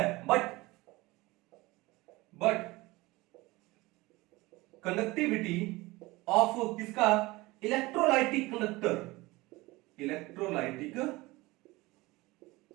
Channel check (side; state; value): left; quieter; 21.2 dB